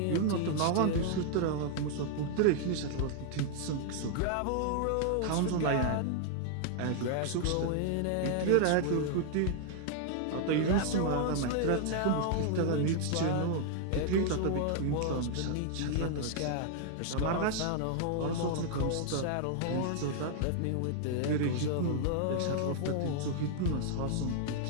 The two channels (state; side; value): different; both; correlation 0.00